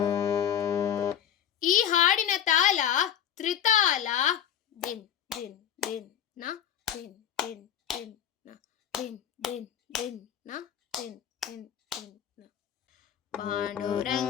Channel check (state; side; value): quieter; right; 9.7 dB